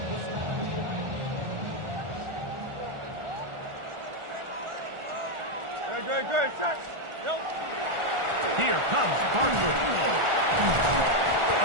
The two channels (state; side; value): late; left; 1.4 ms